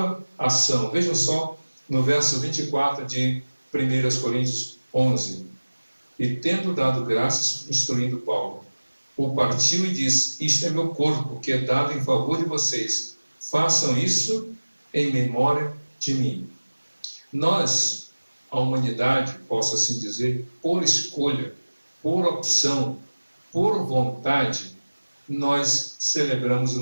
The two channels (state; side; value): inverted; both; correlation -1.00